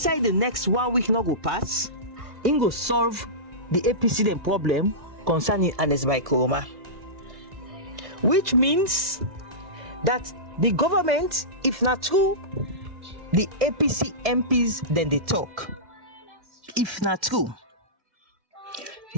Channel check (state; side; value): late; left; 2.0 ms